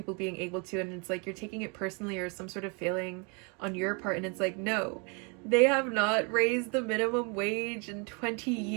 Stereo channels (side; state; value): left; quieter; 33.5 dB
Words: being able to, and it's like you're taking it personally or some sort of failing on your part, and it's like, no, they have not raised the minimum wage in 20